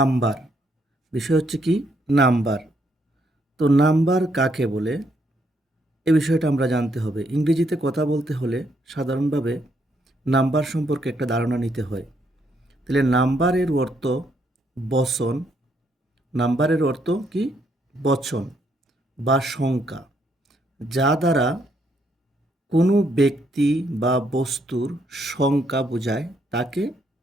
বিষয় হচ্ছে কি? নাম্বার। তো নাম্বার কাকে বলে, এ বিষয়টা আমরা জানতে হবে। ইংরেজিতে কথা বলতে হলে সাধারণভাবে নাম্বার সম্পর্কে একটা ধারণা নিতে হয়। তাহলে নাম্বারের অর্থ বচন। নাম্বারের অর্থ কি? বচন বা সংখ্যা, যা দ্বারা কোনো ব্যক্তি বা বস্তুর সংখ্যা বোঝায় তাকে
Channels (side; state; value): both; normal; correlation 0.73